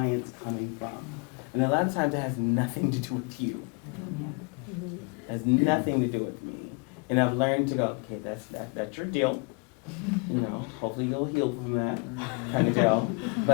coming from? And a lot of times it has nothing to do with you. It has nothing to do with me. And I've learned to go, okay, that's your deal. You know, hopefully you'll heal from that kind of deal.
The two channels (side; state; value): right; quieter; 32.3 dB